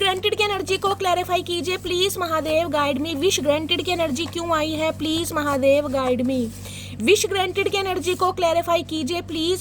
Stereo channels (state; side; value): identical; both; correlation 1.00